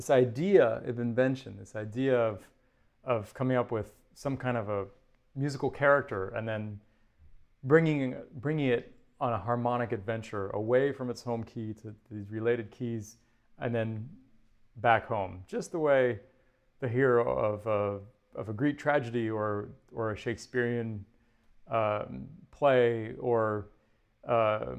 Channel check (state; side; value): identical; both; correlation 1.00